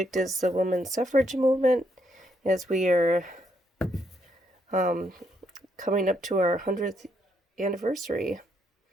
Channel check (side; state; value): both; normal; correlation 0.75